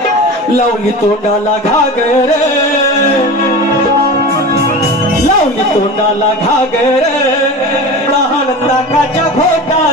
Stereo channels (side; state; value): both; normal; correlation 0.32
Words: लावली तोंडाला घागर लावली तोंडाला घागर लहान ताकाच्या